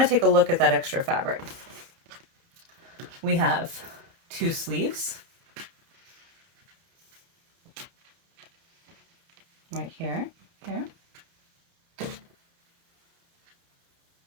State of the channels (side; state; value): left; late; 30 ms